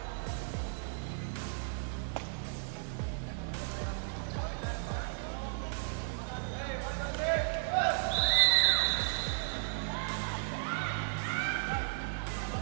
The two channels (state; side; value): silent; left; digital silence